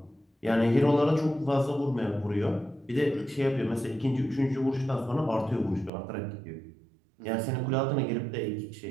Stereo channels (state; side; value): drops out; left; at 5.9 s